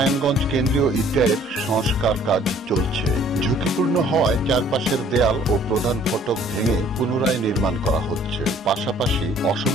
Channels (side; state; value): both; normal; correlation 0.57